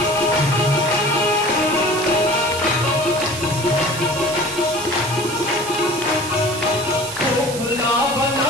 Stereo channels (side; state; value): right; noise; hiss, 9 dB below the sound